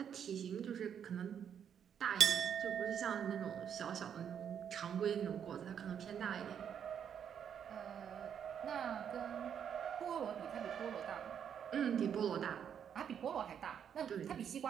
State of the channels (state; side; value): quieter; left; 8.3 dB